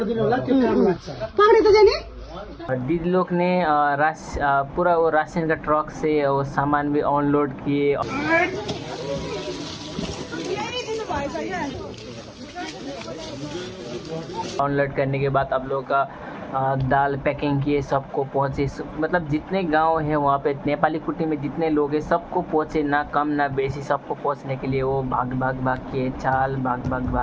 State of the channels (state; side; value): identical; both; correlation 1.00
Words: होला, त्यो काम लाग्छ। पक्रे त जाने। दीदी लोग ने पूरा वो राशन का ट्रक से वो सामान भी अनलोड किए। अनलोड करने के बाद आप लोगों का दाल पैकिंग किए, सबको पहुँचे। मतलब जितने गांव है वहाँ पे नेपाली कुटी में जितने लोग हैं सबको पहुँचे, ना कम ना बेसी, सबको पहुँचने के लिए वो भाग के चाल